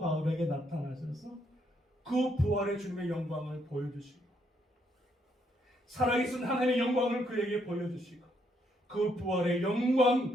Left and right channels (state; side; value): normal; both; correlation 0.73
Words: 나타나셔서 그 부활의 주님의 영광을 보여주시고 살아계신 하나님의 영광을 그에게 보여주시고 그 부활의